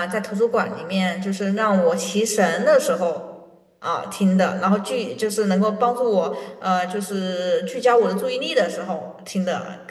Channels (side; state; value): both; identical; correlation 1.00